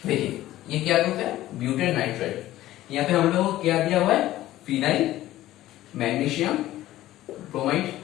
देखिए ये क्या ग्रुप है, ब्यूटेन नाइट्राइड। यहाँ पे हम लोग को क्या दिया हुआ है, phenyl magnesium bromide.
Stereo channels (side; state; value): right; quieter; 14.9 dB